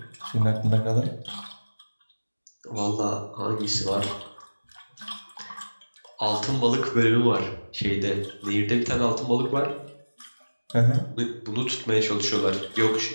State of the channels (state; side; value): inverted; both; correlation -1.00